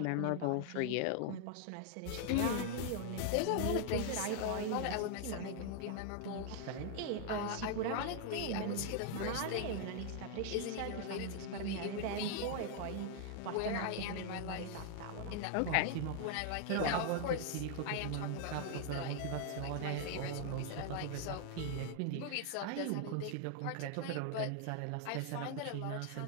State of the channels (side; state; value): both; different; correlation 0.00